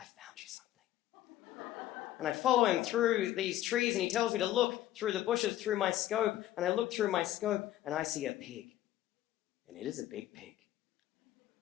found you something. And I follow him through these trees, and he tells me to look through the bushes through my scope, and I look through my scope, and I see a pig. And it is a big pig.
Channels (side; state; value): right; quieter; 13.6 dB